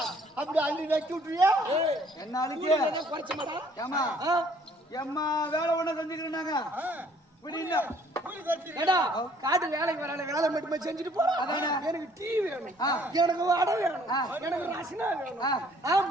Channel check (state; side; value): normal; both; correlation 0.60